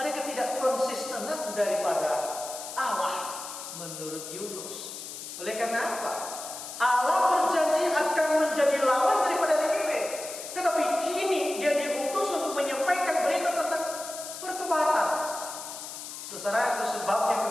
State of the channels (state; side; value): noise; left; hiss, 10 dB below the sound